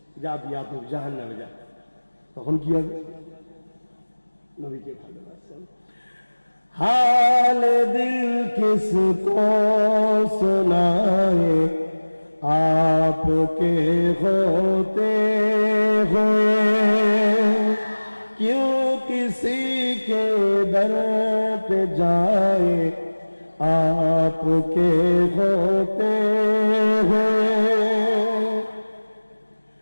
যা বিয়া তো জাহান্নামে যা। তখন কি হবে? নবীকে ভালোবাসেন। हाल दिल किसको सुनाए, आपके होते हुए। क्यों किसी के दर पे जाए, आपके होते हुए।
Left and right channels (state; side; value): inverted; both; correlation -1.00